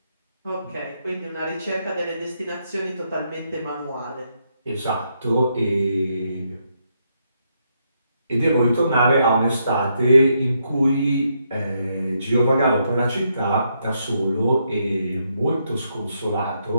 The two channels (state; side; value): inverted; both; correlation -0.78